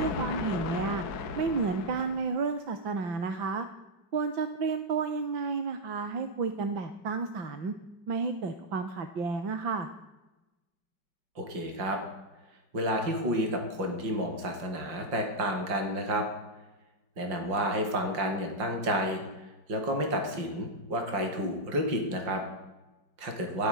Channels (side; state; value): left; late; 5.6 ms